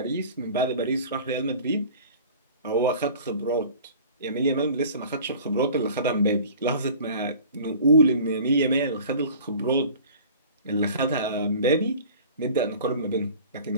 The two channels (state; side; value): inverted; both; correlation -0.44